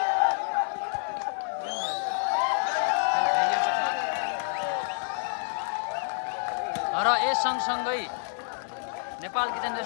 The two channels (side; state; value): right; silent; digital silence